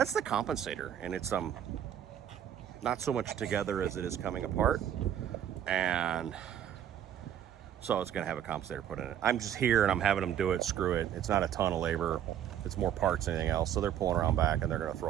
the compensator, and it's not so much together as it is coming apart. And so it's gonna have a compensator put in it. I'm just here and I'm having them do it, screw it. It's not a ton of labor. It's more parts than anything else. So they're pulling around back and they're gonna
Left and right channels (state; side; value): quieter; left; 10.1 dB